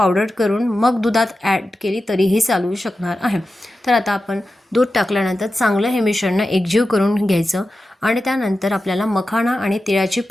करून मग दुधात ॲड केली तरीही चालू शकणार आहे। तर आता आपण दूध टाकल्यानंतर चांगलं हे मिश्रण एकजीव करून घ्यायचं आणि त्यानंतर आपल्याला मखाणा आणि तिळाची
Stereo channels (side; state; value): both; normal; correlation 0.93